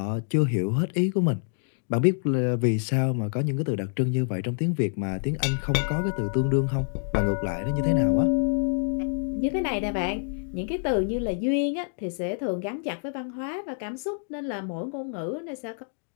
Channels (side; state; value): right; silent; 60 dB below the other